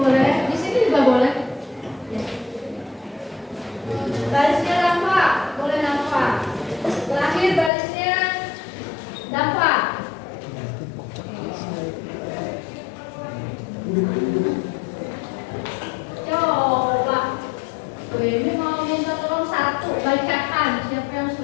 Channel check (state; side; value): drops out; right; at 7.7 s